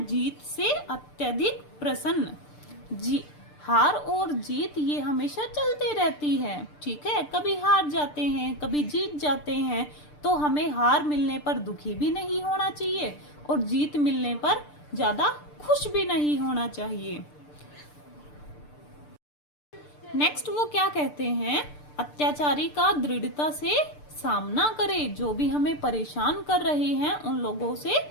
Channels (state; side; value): late; right; 6.7 ms